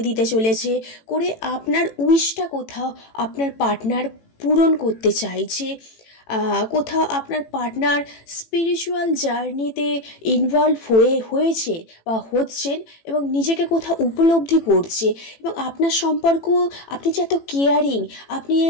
দিতে চলেছে, করে আপনার উইশটা কোথাও আপনার পার্টনার পূরণ করতে চাইছে। কোথাও আপনার পার্টনার স্পিরিচুয়াল জার্নিতে ইনভলভ হয়েছে বা হচ্ছেন, এবং নিজেকে কোথাও উপলব্ধি করছে। এবং আপনার সম্পর্ক, আপনি যে এত কেয়ারিং, আপনি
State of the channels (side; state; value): right; late; 18 ms